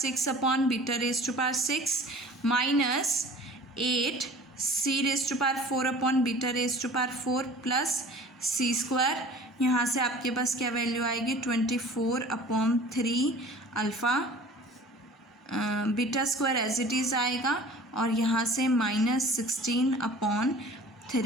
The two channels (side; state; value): both; normal; correlation 0.45